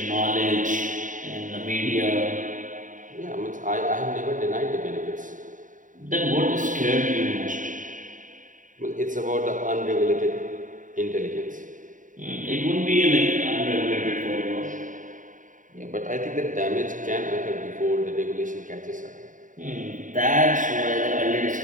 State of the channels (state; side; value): late; left; 0.38 ms